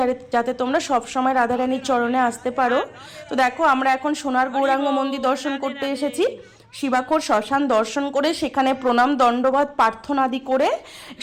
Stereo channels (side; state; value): both; identical; correlation 1.00